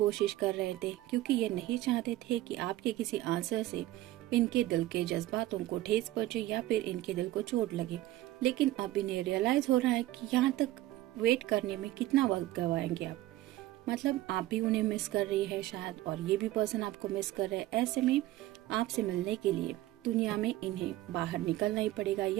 कर रहे थे, क्योंकि ये नहीं चाहते थे कि आपके किसी आंसर से इनके दिल के जज्बातों को ठेस पहुंचे या फिर इनके दिल को चोट लगे। लेकिन अब इन्हें रियलाइज हो रहा है कि यहाँ तक वेट करने में कितना वक्त गवाएंगे आप। मतलब आप भी उन्हें मिस कर रही है शायद, और ये भी पर्सन आपको मिस कर रहे हैं। ऐसे में आपसे मिलने के लिए दुनिया में इन्हें बाहर निकलना ही पड़ेगा,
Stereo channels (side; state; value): left; quieter; 15.6 dB